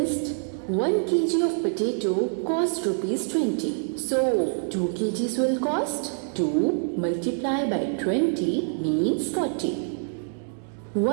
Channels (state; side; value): silent; left; digital silence